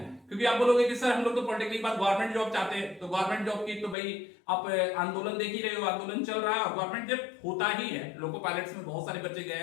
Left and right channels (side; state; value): right; drops out; at 4.0 s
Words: हैं, क्योंकि आप बोलोगे कि सर हम लोग तो पॉलिटेक्निक के बाद गवर्नमेंट जॉब चाहते हैं, तो गवर्नमेंट जॉब की तो भाई आप आंदोलन देख ही रहे हो, आंदोलन चल रहा है और गवर्नमेंट जब होता ही है। लोको पायलट्स में बहुत सारे बच्चे गए